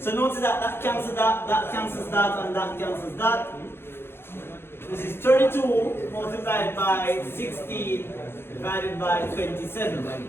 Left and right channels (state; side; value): late; right; 0.11 ms